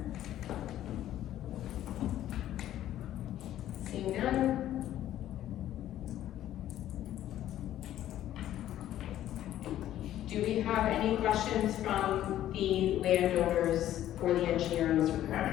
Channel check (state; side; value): quieter; right; 12.6 dB